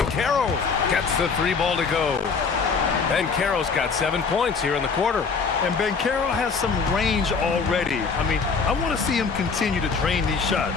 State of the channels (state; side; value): quieter; right; 5.2 dB